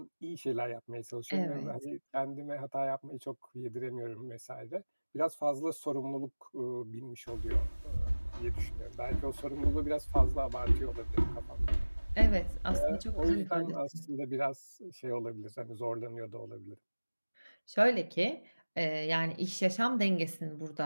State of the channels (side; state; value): both; inverted; correlation -1.00